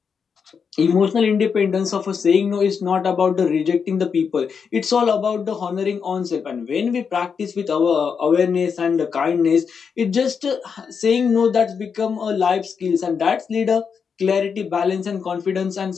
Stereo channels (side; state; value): right; quieter; 6.3 dB